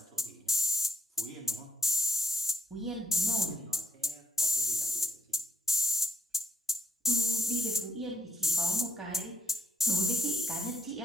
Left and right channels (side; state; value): both; normal; correlation 0.82